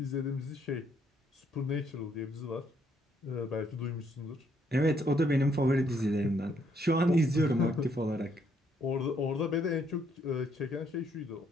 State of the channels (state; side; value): normal; both; correlation 0.71